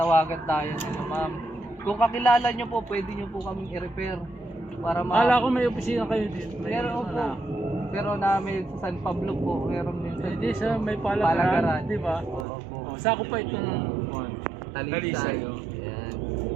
tayo nila ma'am. Kung kakilala nyo po, pwede nyo po kaming i-repair. Para Kala ko may opisina kayo dito. Meron po. Pero namin sa San Pablo po. Meron din sa Hindi sa may Palagaran. palagaran, di ba? Oo po. Oh, sako pa itong Talisay. Ayan.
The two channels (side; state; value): left; drops out; at 12.5 s